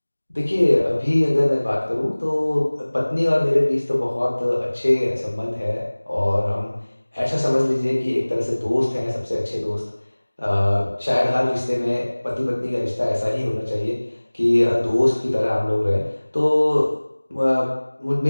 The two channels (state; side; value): inverted; both; correlation -1.00